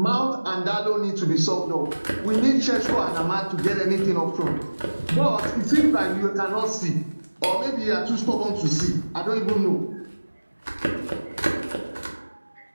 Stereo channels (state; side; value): inverted; both; correlation -1.00